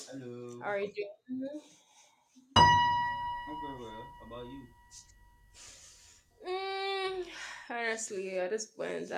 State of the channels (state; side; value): identical; both; correlation 1.00